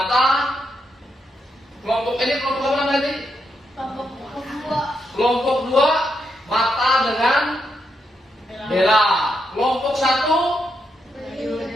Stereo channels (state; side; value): normal; both; correlation 0.81